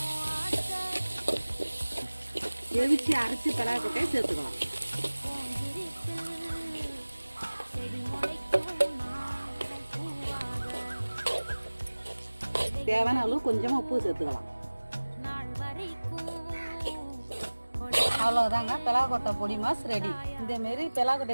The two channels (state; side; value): inverted; both; correlation -1.00